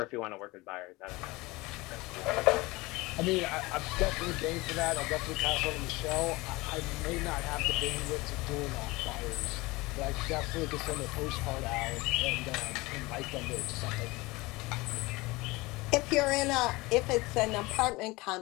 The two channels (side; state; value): right; quieter; 22.3 dB